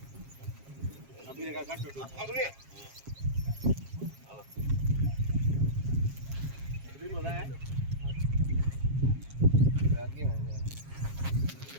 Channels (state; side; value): late; left; 7.4 ms